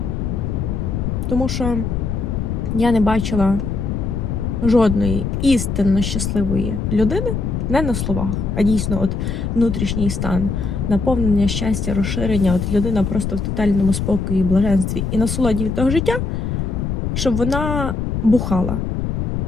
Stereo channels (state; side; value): noise; left; rumble, 2 dB below the sound